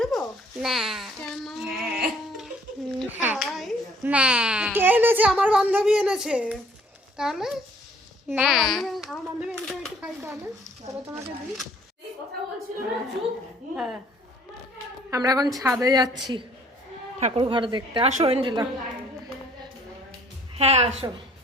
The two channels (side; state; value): both; normal; correlation 0.59